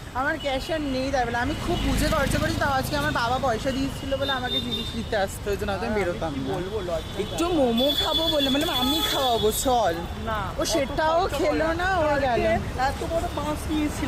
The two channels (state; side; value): identical; both; correlation 1.00